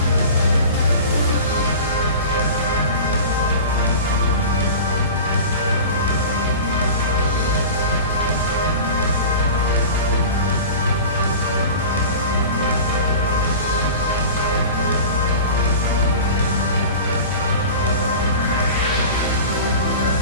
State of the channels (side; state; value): both; inverted; correlation -0.35